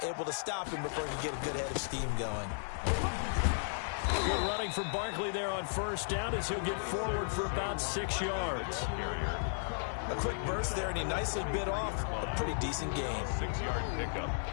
able to stop him before he could get a good head of steam going. Good running for Barkley there on first down as he'll get forward for about 6 yards. A quick burst there, and he nicely bit off a pretty decent gain. 6-yard pickup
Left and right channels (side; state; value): right; silent; digital silence